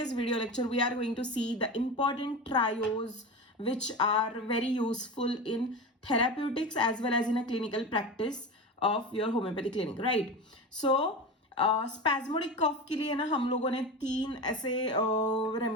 video lecture we are going to see the important trios which are very useful in therapeutics as well as in a clinical practice of your homeopathy clinic, right? So spasmodic cough के लिए ना हम लोगों ने 3 ऐसे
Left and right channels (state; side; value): normal; both; correlation 0.26